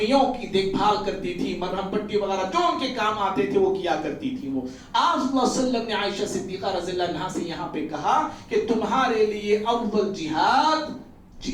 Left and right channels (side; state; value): both; identical; correlation 1.00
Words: کی دیکھ بھال کرتی تھی، مرہم پٹی وغیرہ جو ان کے کام آتے تھے وہ کیا کرتی تھی. وہ آپ صلی اللہ علیہ وسلم نے عائشہ صدیقہ رضی اللہ عنہا سے یہاں پہ کہا کہ تمہارے لیے افضل جہاد